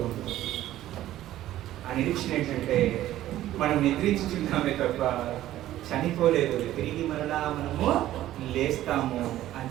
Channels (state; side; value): quieter; left; 13.8 dB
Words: ఉంటాం. ఆ నిరీక్షణ ఏంటంటే మనం నిద్రించుచున్నామే తప్ప చనిపోలేదు, తిరిగి మరలా మనము లేస్తాము అని